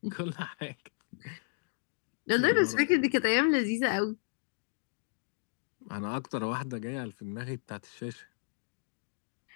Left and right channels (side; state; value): right; silent; digital silence